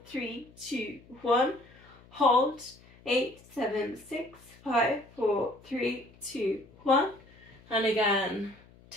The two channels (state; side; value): noise; left; hum, 25 dB below the sound